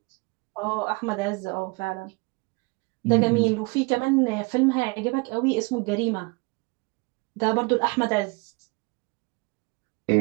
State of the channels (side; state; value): left; quieter; 28.3 dB